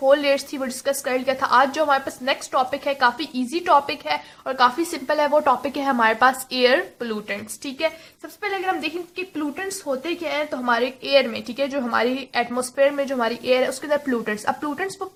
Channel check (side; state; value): both; identical; correlation 1.00